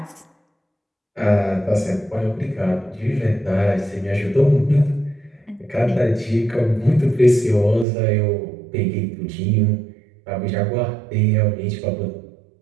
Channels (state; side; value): drops out; left; at 7.9 s